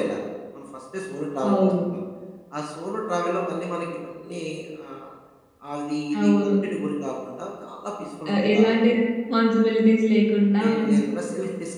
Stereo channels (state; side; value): identical; both; correlation 1.00